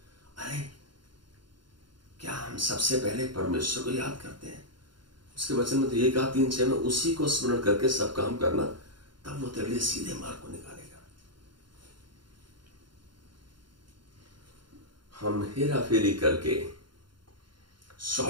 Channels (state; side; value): late; left; 0.72 ms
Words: अरे क्या हम सबसे पहले परमेश्वर को याद करते हैं? उसके वचन में तो ये कहा 3:6 में, उसी को स्मरण करके सब काम करना, तब वो तेरे लिए सीधे मार्ग को निकालेगा। हम हेरा फेरी करके